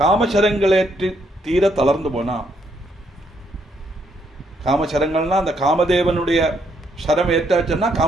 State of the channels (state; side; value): normal; both; correlation 0.73